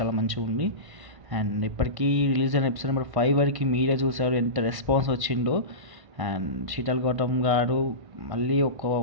మంచిగా ఉంది. అండ్ ఇప్పటికీ రిలీజ్ అయిన ఎపిసోడ్ నెంబర్ 5 వరకు మీరే చూసారు ఎంత రెస్పాన్స్ వచ్చిందో. అండ్ శీతల్ గౌతమ్ గారు మళ్ళీ ఒక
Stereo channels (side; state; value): left; late; 1.5 ms